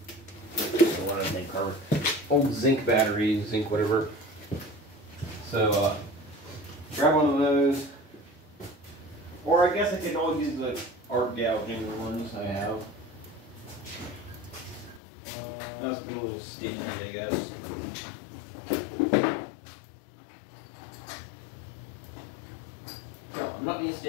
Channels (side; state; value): right; drops out; at 15.0 s